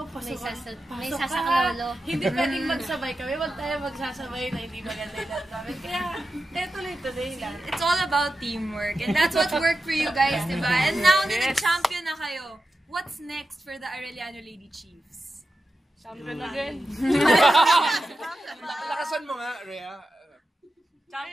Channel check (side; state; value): both; normal; correlation 0.91